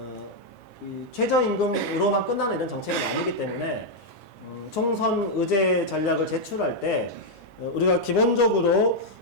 이 최저임금으로만 끝나는 이런 정책은 아니기 때문에 총선 의제 전략을 제출할 때 우리가 기본적으로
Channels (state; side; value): normal; both; correlation -0.02